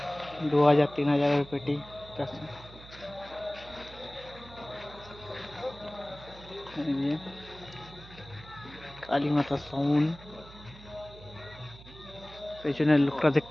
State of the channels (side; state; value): right; noise; hum, 19 dB below the sound